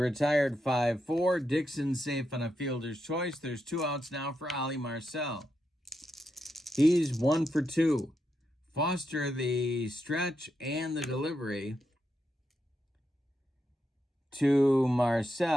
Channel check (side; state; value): both; normal; correlation 0.84